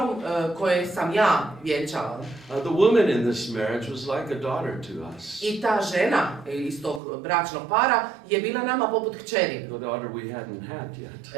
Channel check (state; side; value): drops out; left; at 7.0 s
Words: koje sam ja vjenčala. The woman in this marriage was like a daughter to us. I ta žena iz tog bračnog para je bila nama poput kćeri. The daughter we hadn't had